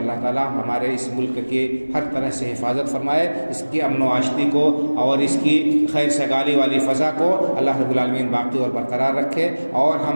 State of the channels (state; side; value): inverted; both; correlation -1.00